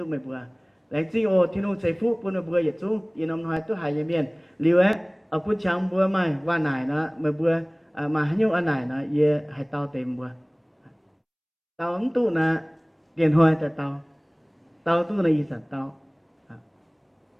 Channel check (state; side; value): identical; both; correlation 1.00